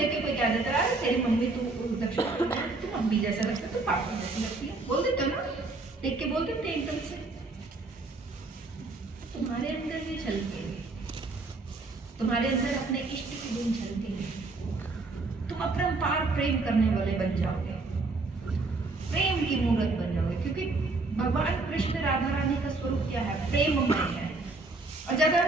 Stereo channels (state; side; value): quieter; left; 3.4 dB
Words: के कोई कह देता है तेरी मम्मी तू दक्षिण तू मम्मी जैसा लगता है, तू पापा जैसी लगती है, बोल देते हो ना, देख के बोल देते हैं एकदम से। तुम्हारे अंदर भी झलकेंगे, तुम्हारे अंदर अपने इष्ट के गुण झलकेंगे, तुम अपरंपार प्रेम करने वाले बन जाओगे, प्रेम की मूर्त बन जाओगे। क्योंकि भगवान कृष्ण राधा रानी का स्वरूप क्या है, प्रेममय है। और ज्यादा